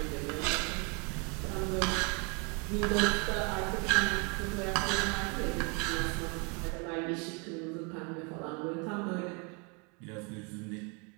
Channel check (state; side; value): quieter; left; 33.0 dB